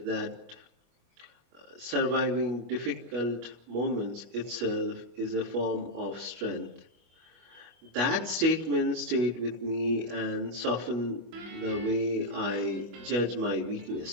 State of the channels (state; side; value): late; left; 25 ms